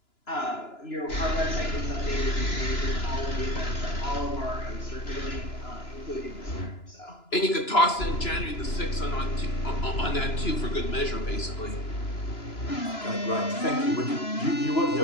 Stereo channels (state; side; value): late; right; 2.9 ms